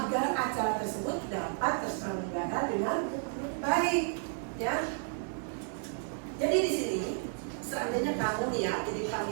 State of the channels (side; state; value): left; silent; 56 dB below the other